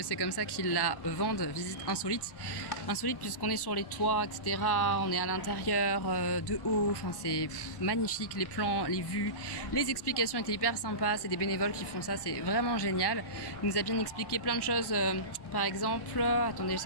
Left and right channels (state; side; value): late; right; 1.1 ms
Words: c'est comme ça qu'ils la vendent, visite insolite. Insolite puisqu'on est sur les toits, etc. On est à l'intérieur, de haut. Enfin, c'est magnifique. Les plans, les vues, les explications étaient hyper sympas. C'est des bénévoles qui font ça. C'est vraiment génial. Il nous a bien expliqué plein de choses. Par exemple, attendez,